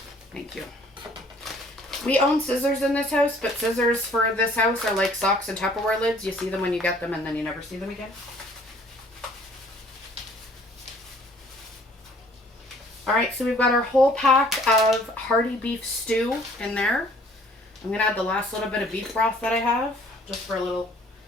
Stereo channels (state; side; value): normal; both; correlation 0.56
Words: Thank you. We own scissors in this house, but scissors for this house are like socks and Tupperware lids. You see them when you get them and then you never see them again. Alright, so we've got our whole pack of hearty beef stew in there. I'm going to add the last little bit of beef broth that I have, just for a little